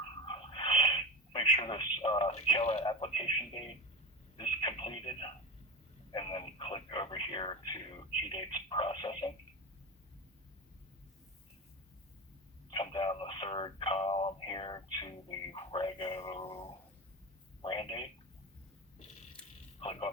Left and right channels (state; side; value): normal; both; correlation 0.25